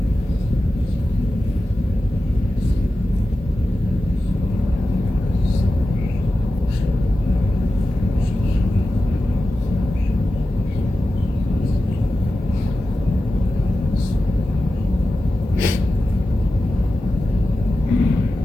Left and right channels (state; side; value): normal; both; correlation 0.93